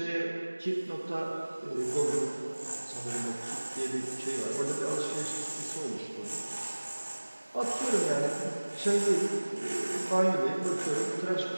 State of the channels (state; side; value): inverted; both; correlation -1.00